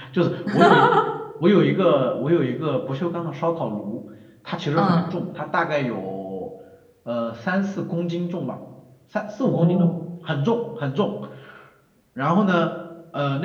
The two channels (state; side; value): identical; both; correlation 1.00